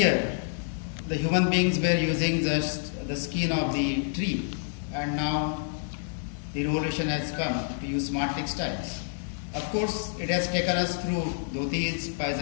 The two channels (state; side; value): silent; right; 59 dB below the other